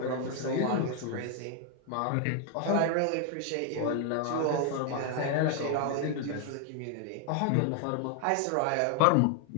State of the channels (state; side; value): different; both; correlation 0.00